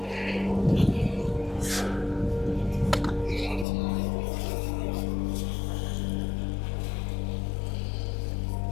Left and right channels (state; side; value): drops out; right; at 3.7 s